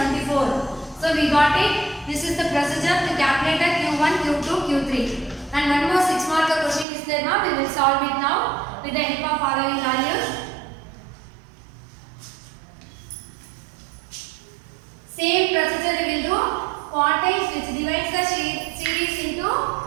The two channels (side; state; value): left; drops out; at 6.9 s